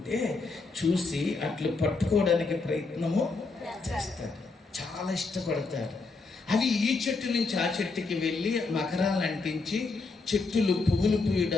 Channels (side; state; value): right; quieter; 3.9 dB